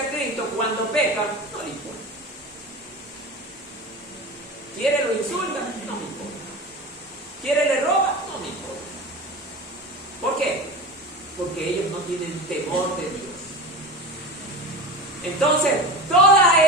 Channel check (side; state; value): both; normal; correlation 0.29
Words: a Cristo, cuando peca, no le importa. ¿Quiere lo insulta? No me importa. ¿Quiere le roba? No me importa. ¿Por qué? Porque ellos no tienen temor de Dios. Entonces, todas